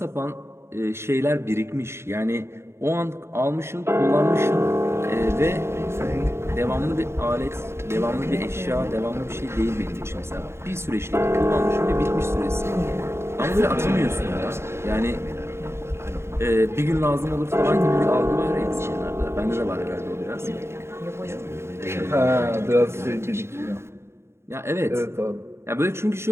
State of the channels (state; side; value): late; left; 0.13 ms